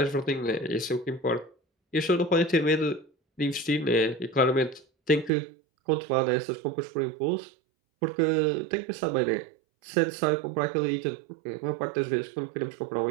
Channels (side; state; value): left; drops out; at 5.3 s